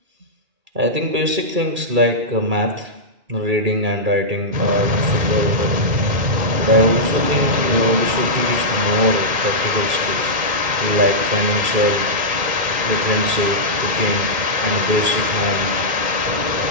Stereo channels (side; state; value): left; late; 2.1 ms